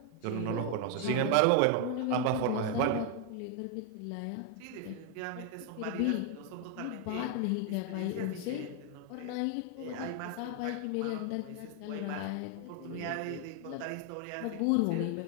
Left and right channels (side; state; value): both; different; correlation 0.01